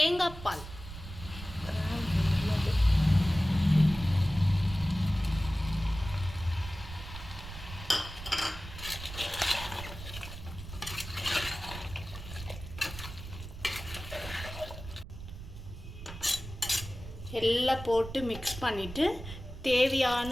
பால் எல்லாம் போட்டு மிக்ஸ் பண்ணிவிட்டு தேவையான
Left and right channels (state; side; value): noise; right; rumble, 12 dB below the sound